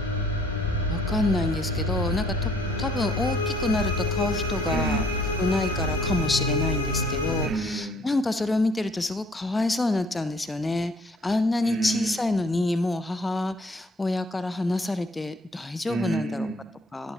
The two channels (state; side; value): normal; both; correlation 0.60